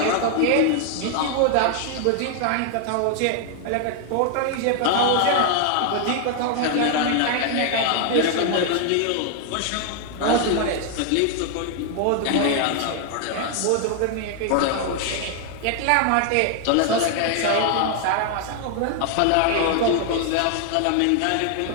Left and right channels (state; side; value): different; both; correlation 0.00